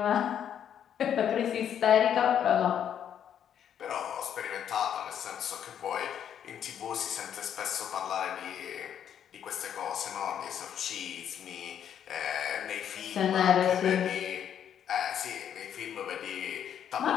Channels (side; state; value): right; quieter; 9.2 dB